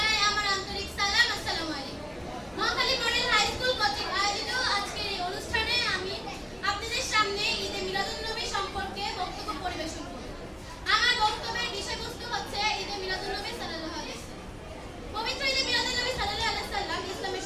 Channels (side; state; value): both; identical; correlation 1.00